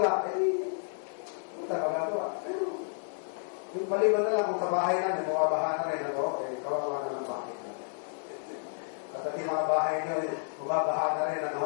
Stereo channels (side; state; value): right; silent; 57 dB below the other